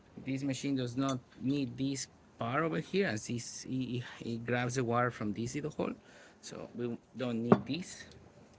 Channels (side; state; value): both; identical; correlation 1.00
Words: This machine does not need this part over here, as it grabs the wire from this little hole, so we don't need this.